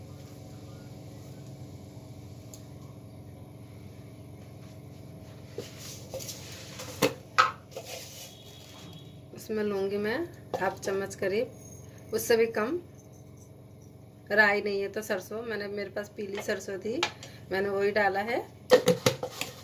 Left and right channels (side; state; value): both; identical; correlation 1.00